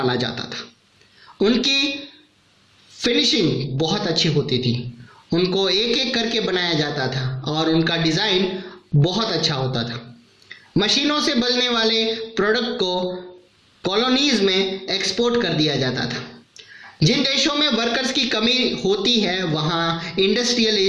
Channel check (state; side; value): identical; both; correlation 1.00